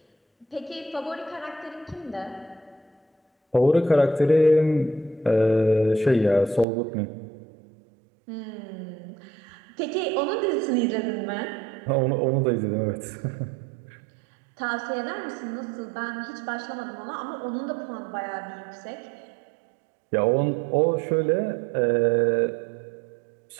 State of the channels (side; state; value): left; drops out; at 6.7 s